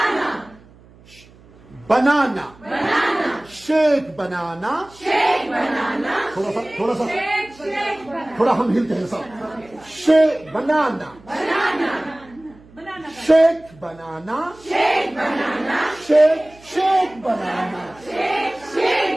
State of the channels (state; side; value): noise; right; hum, 25 dB below the sound